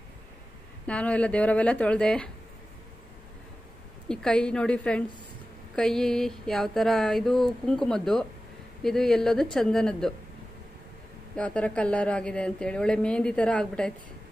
ನಾನು ಎಲ್ಲ ದೇವರವೆಲ್ಲ ತೊಳೆದೆ. ಈ ಕೈ ನೋಡಿ ಫ್ರೆಂಡ್ಸ್, ಕೈ ಯಾವ ಥರ, ಇದು ಕುಂಕುಮದ್ದು, ಇದು ಎಲ್ಲದು ಚಂದನದ್ದು. ಯಾವ ಥರ ಕಲರ್ ಆಗಿದೆ ಅಂತೇಳಿ, ಒಳ್ಳೆ ಮೆಹಂದಿ ಥರ ಆಗ್ಬಿಟ್ಟೈತೆ.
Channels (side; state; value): both; normal; correlation 0.95